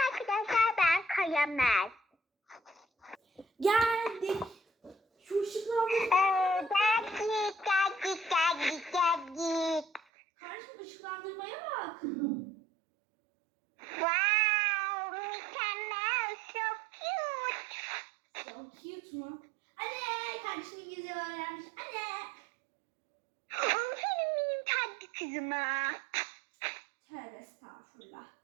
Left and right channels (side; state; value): left; drops out; at 10.0 s